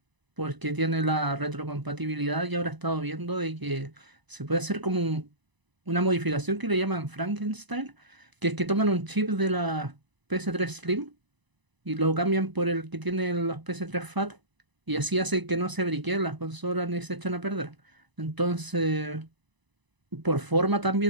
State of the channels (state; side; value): late; left; 1.0 ms